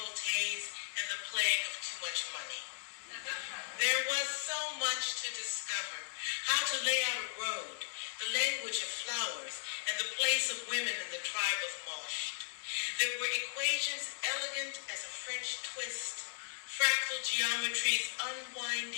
and the plague of too much money. There was so much to discover: how to lay out a road, the language of flowers, and the place of women in the tribe of Mosh. There were equations elegant as a French twist, fractal geometry's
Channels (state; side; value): silent; right; digital silence